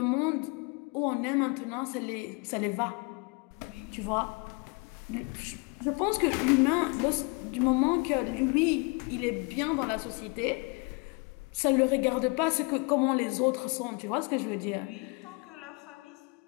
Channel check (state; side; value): quieter; right; 30.7 dB